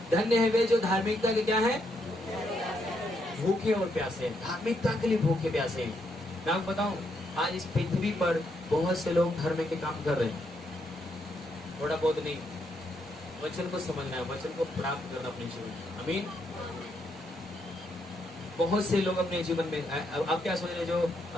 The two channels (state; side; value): normal; both; correlation 0.77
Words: धन्य है वे जो धार्मिकता के क्या है, भूखे और प्यासे। धार्मिकता के लिए भूखे प्यासे। मैं आपको बताऊं, आज इस पृथ्वी पर बहुत से लोग धर्म के काम कर रहे हैं, थोड़ा बहुत नहीं। वचन को समझना है, वचन को प्राप्त करना अपने जीवन में। आमीन। बहुत से लोग अपने जीवन में, आप क्या सोच रहे